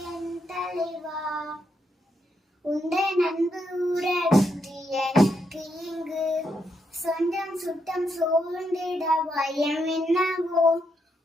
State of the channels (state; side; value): normal; both; correlation 0.80